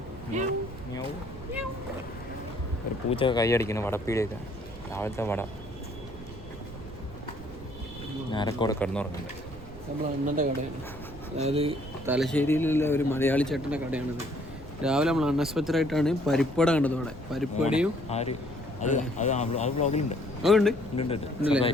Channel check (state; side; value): noise; right; rumble, 15 dB below the sound